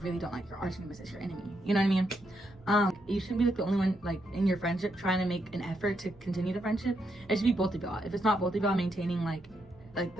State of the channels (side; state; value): both; normal; correlation 0.79